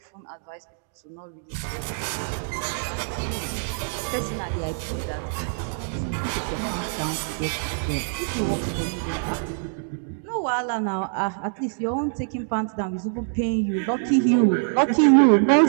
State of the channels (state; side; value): silent; left; digital silence